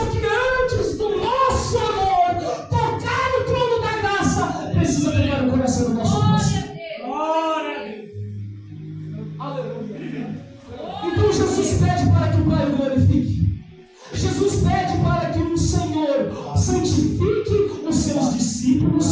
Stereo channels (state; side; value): identical; both; correlation 1.00